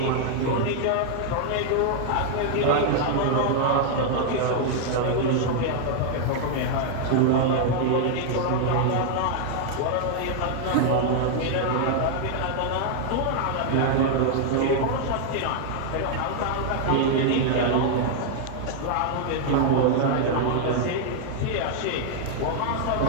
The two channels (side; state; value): both; different; correlation 0.00